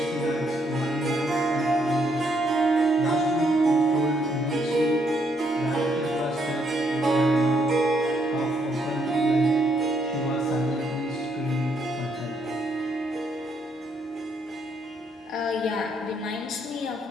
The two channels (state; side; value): normal; both; correlation 0.73